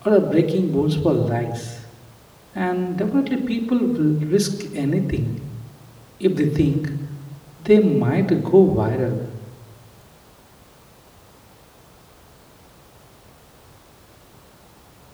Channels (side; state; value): both; identical; correlation 1.00